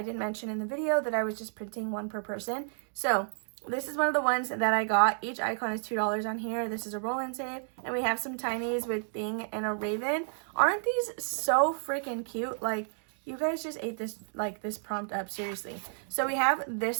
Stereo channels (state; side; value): silent; left; digital silence